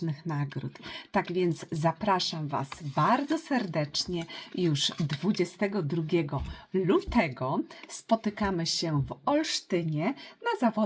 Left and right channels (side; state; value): both; identical; correlation 1.00